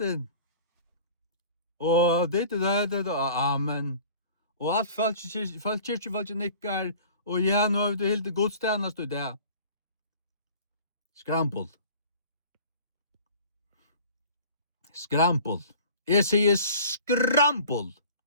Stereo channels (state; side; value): inverted; both; correlation -0.45